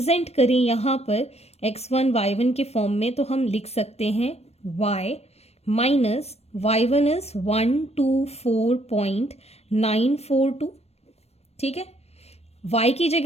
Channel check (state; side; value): late; right; 0.31 ms